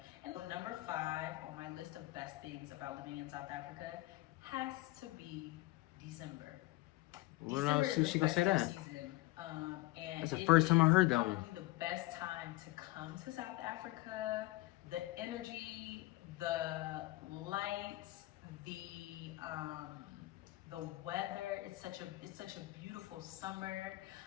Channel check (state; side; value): quieter; right; 19.4 dB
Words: And number 5 on my list of best things about living in South Africa has to be December. What else? She gonna say that? Season, and that's the first time I heard that one. The best time to come to South Africa. The energy, the lights, the weather. It's such a beautiful summer.